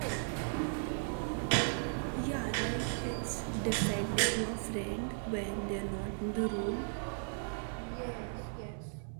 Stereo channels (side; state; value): left; silent; 54 dB below the other